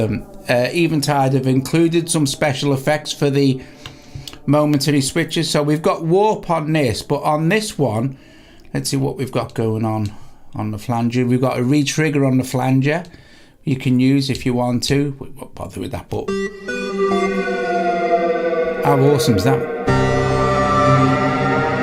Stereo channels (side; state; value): both; identical; correlation 1.00